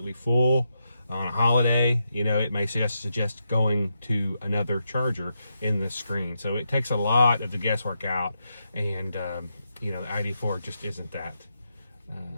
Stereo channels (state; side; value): inverted; both; correlation -0.84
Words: full on a holiday, it may suggest going to another charger in this screen. So it takes a lot of the guesswork out, and the ID.4 just isn't that